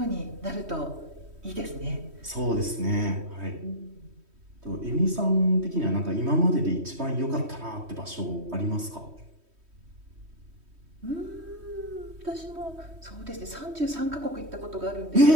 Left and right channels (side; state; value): left; late; 3.1 ms